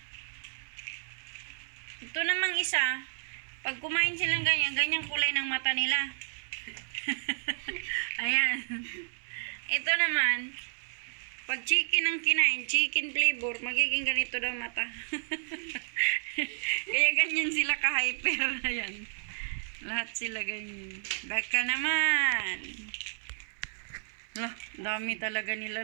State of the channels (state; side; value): silent; left; 57 dB below the other